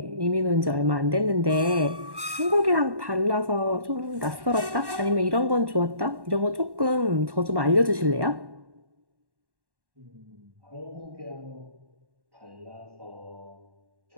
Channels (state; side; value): late; left; 1.1 ms